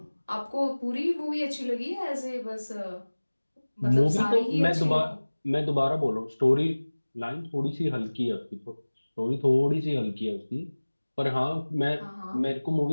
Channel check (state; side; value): inverted; both; correlation -1.00